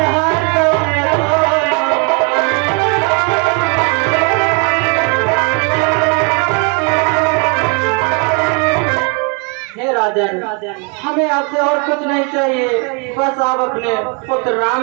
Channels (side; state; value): left; quieter; 34.9 dB